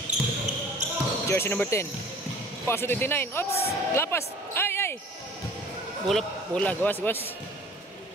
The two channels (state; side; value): normal; both; correlation 0.47